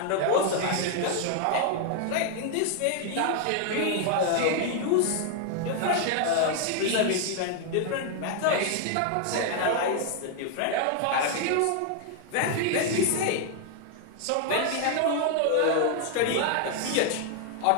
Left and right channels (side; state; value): both; different; correlation 0.00